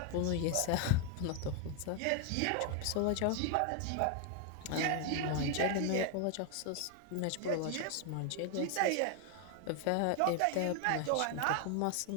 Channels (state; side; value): different; both; correlation 0.00